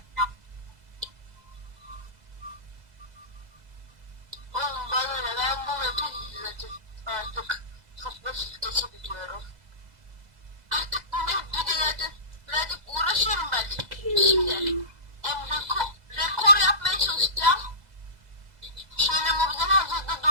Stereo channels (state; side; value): late; left; 2.0 ms